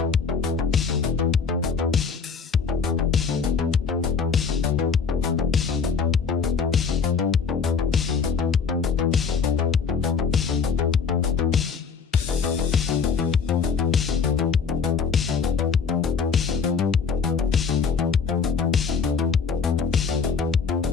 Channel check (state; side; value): quieter; right; 5.8 dB